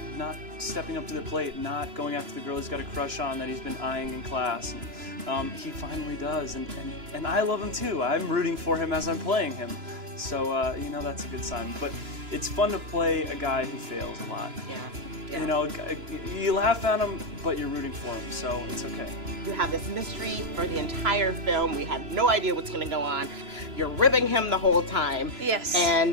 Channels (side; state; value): left; late; 3.0 ms